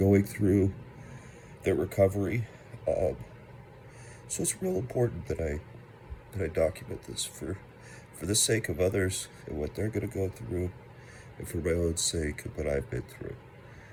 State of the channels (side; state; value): both; identical; correlation 1.00